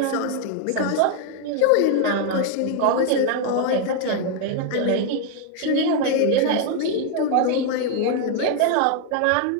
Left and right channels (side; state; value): both; different; correlation 0.00